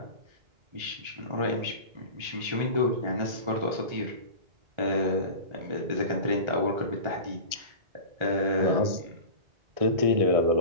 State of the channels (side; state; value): left; late; 1.4 ms